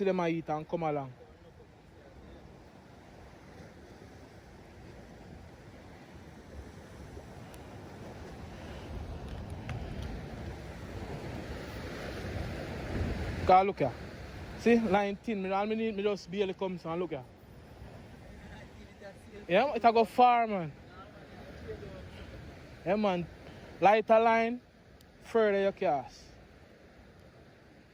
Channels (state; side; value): identical; both; correlation 1.00